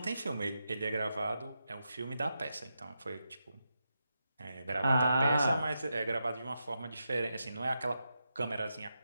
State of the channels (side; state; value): both; inverted; correlation -0.87